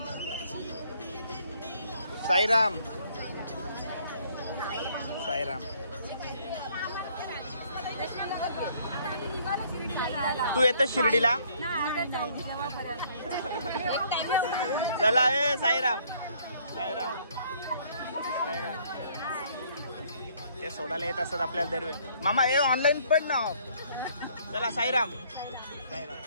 साईराम साईराम. तू येतो शिर्डीला? चला ए साईराम साईराम साईराम. ते सोडायला येत असतात आपल्याला दरवेळी. मामा हे ऑनलाईन पण ना. चला साईराम साईराम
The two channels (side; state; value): both; inverted; correlation -0.63